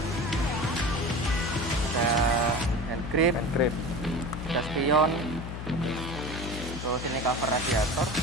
Ada hand grip, ada spion, terus ini cover radiator,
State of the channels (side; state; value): left; noise; hum, 7 dB below the sound